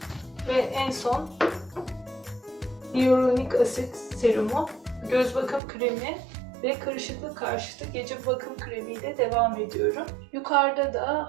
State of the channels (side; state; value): left; drops out; at 5.6 s